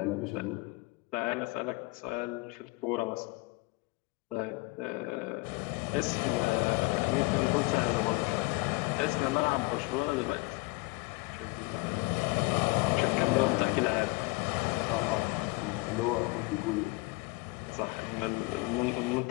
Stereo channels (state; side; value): quieter; right; 24.6 dB